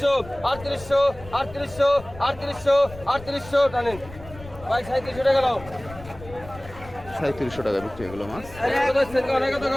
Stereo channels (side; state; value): left; noise; rumble, 17 dB below the sound